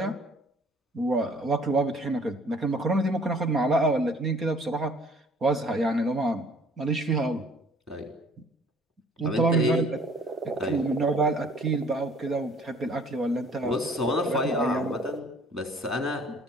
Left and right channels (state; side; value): normal; both; correlation 0.55